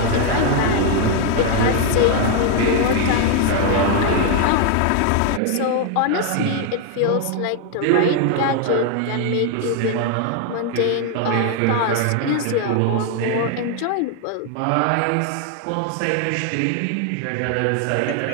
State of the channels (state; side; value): different; both; correlation 0.01